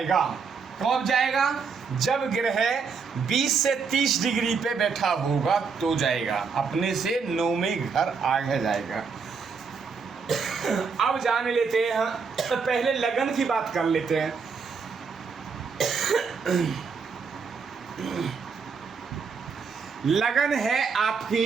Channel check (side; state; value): left; quieter; 5.4 dB